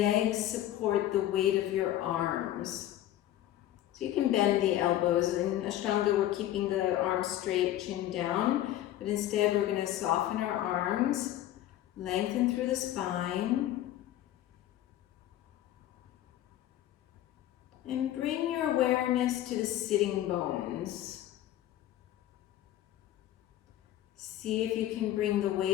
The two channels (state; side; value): quieter; right; 13.1 dB